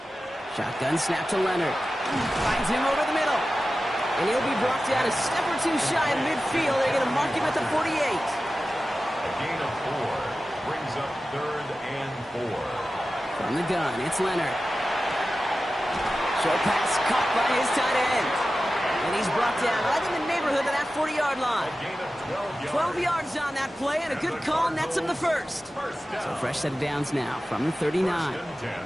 Shotgun snap to Leonard. Finds him over the middle. And he'll be brought down a step or 2 shy of midfield. They're going to mark him at the 48. A gain of 4 brings up 3rd and 4. From the gun, it's Leonard. Short pass caught by his tight end. And he's brought down right in the neighborhood of that 40-yard line. A gain of 12 yards on that play, and a good call nets him the first. So fresh set of downs now from the 39. 1st and 10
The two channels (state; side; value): normal; both; correlation 0.94